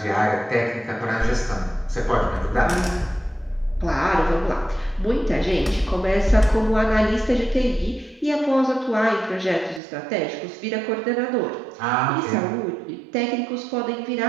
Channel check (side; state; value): left; drops out; at 9.8 s